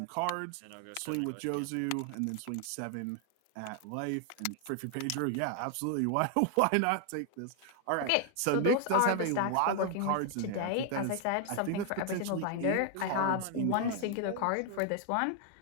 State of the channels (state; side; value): different; both; correlation 0.00